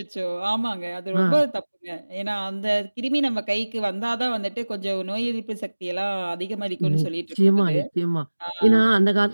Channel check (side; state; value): both; inverted; correlation -1.00